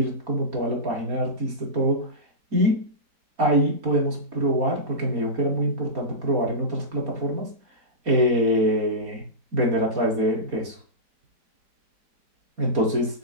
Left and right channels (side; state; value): left; late; 4.2 ms